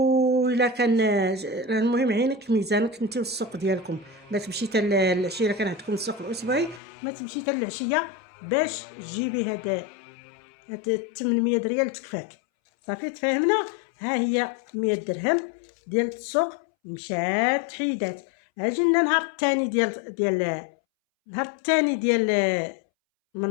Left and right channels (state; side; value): drops out; right; at 6.8 s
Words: كان المهم عينك ميزانك انت والسوق ديالكم. ما تمشي حتى العشيه كان عندكم السوق الاسبوعي ما تمشي حتى العشيه باش تجيبي هاد 800 ريال تكفاك صافي. تفاهمنا. ها هي 100 درهم ديال السوق مشات حيدات. اجي لنا النهار الثاني النهار الثاني ديال